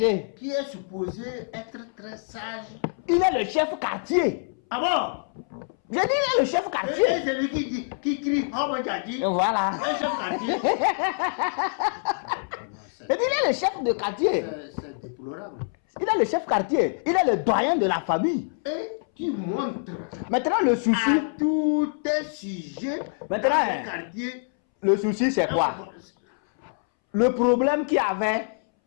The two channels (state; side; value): silent; right; 61 dB below the other